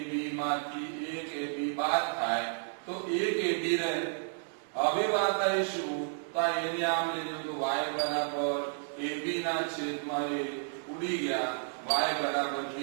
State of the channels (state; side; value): silent; left; digital silence